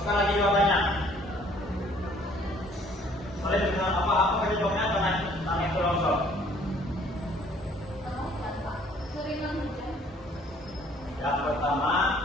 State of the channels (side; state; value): both; normal; correlation 0.59